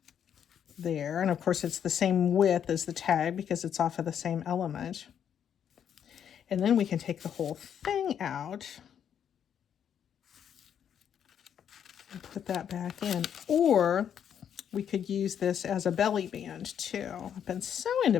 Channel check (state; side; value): quieter; right; 8.7 dB